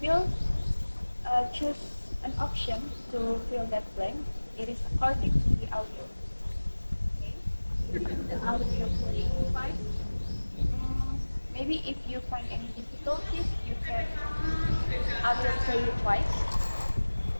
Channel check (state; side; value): inverted; both; correlation -1.00